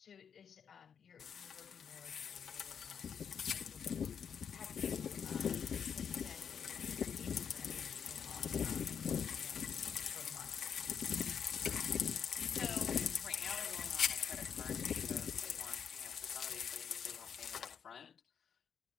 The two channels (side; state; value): right; quieter; 7.4 dB